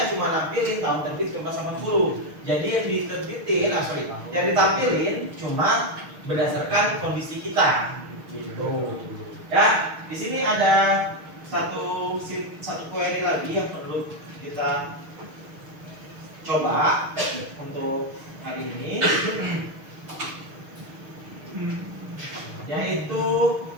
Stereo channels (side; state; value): left; late; 6.5 ms